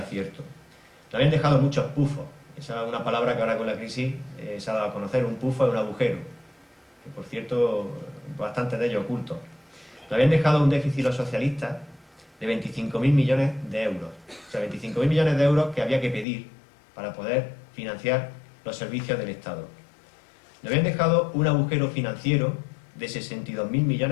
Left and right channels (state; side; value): drops out; right; at 16.2 s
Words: cierto. Le habían dejado muchos pufos. Esa es una palabra que ahora con la crisis se ha dado a conocer. Un pufo es un agujero, que por cierto, bastante de ellos ocultos. Le habían dejado un déficit los socialistas de 25.000 millones de euros. O sea, 25.000 millones de euros que había que pedir para poder financiar los servicios del Estado. Le habían dejado un agujero financiero de 62.000